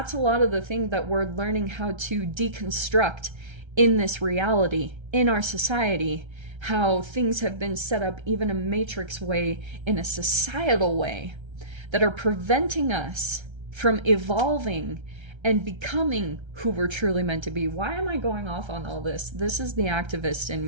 a lot of the thing that we're learning how to deconstruct in this reality, in our society, how things have been set up even a matrix way, in a societal way, that are preventing us from evolving and becoming who we're truly meant to be. Why am I going off on all this? This is the activist in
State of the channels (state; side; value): late; left; 1.3 ms